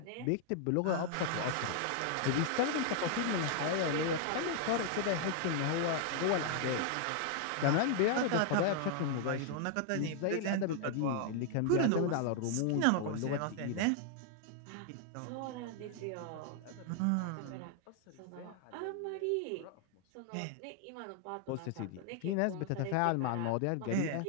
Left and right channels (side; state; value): both; different; correlation 0.00